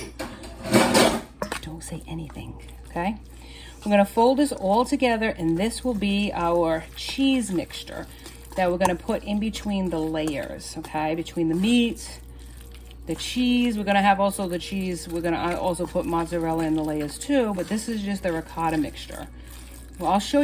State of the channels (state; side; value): identical; both; correlation 1.00